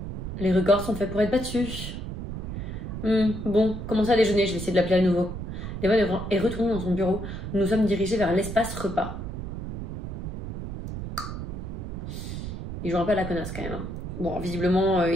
Les records sont faits pour être battus. Bon, commencez à déjeuner, je vais essayer de l'appeler à nouveau. Devon est retourné dans son bureau. Nous nous sommes dirigés vers l'espace repas. Il joue un peu à la connasse quand même. Bon, visiblement,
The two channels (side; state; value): right; noise; rumble, 6 dB below the sound